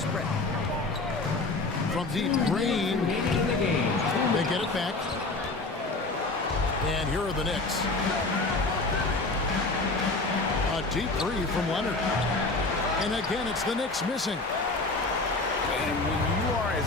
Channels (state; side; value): quieter; right; 3.3 dB